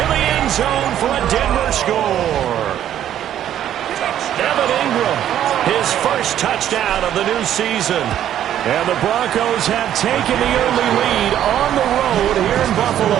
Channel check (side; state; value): left; quieter; 11.0 dB